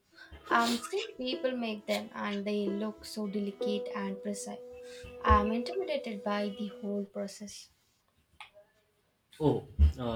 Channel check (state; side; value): identical; both; correlation 1.00